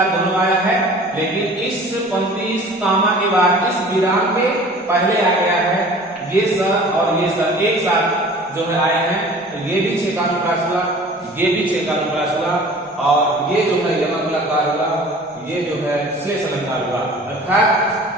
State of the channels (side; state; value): both; normal; correlation 0.45